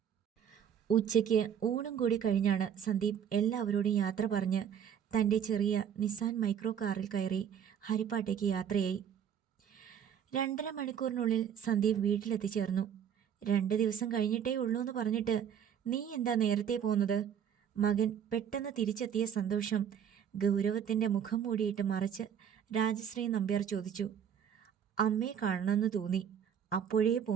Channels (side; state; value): left; quieter; 8.5 dB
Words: ഉച്ചയ്ക്ക് ഊണും കൂടി കഴിഞ്ഞാണ് സന്ദീപ് എല്ലാവരോടും യാത്ര പറഞ്ഞ് തൻ്റെ ചെറിയ നിസാൻ മൈക്രോ കാറിൽ കയറി ഹരിപ്പാട്ടേക്ക് യാത്രയായി. 2.5 മണിക്കൂറിനുള്ളിൽ സന്ദീപ് വീട്ടിലെത്തിച്ചേർന്നു. 2 ദിവസം കഴിഞ്ഞിട്ടേ ഉള്ളൂ എന്ന് പറഞ്ഞിട്ട് നീ എന്താ നേരത്തെ പോകുന്നത്? മകൻ പെട്ടെന്ന് തിരിച്ചെത്തിയ സന്തോഷം ഗൗരവത്തിൻ്റെ മുഖം മൂടിയിട്ട് മറച്ച് രാജശ്രീ നമ്പ്യാർ ചോദിച്ചു. അമ്മയെ കാണണമെന്ന് തോന്നി, അപ്പോഴേ